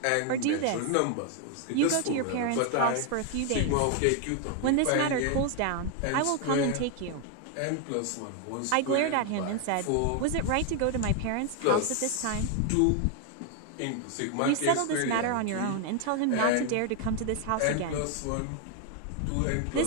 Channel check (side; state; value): both; different; correlation 0.00